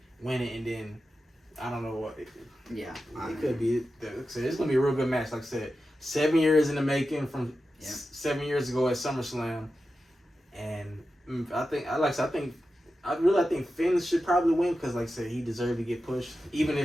win it, and then I don't know what. It could be. It's gonna be a real good match. Like I said, 7 years in the making from 7 years ago at SummerSlam, and I think Finn should probably win because, like I said, he deserved to get pushed. Even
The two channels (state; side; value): normal; both; correlation 0.92